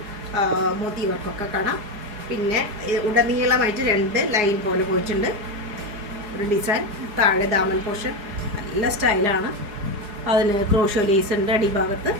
മോത്തി വർക്കൊക്കെ കാണാം. പിന്നെ ഉടനീളമായിട്ട് 2 ലൈൻ പോലെ പോയിട്ടുണ്ട് ഒരു ഡിസൈൻ. താഴെ ദാമൻ പോർഷൻ നല്ല സ്റ്റൈലാണ്. അതിന് ക്രോഷോ ലേസ് ഉണ്ട് അടിഭാഗത്ത്.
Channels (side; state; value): left; late; 4.8 ms